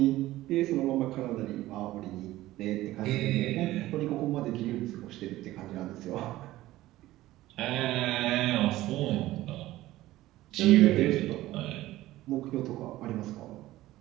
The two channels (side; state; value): left; quieter; 16.2 dB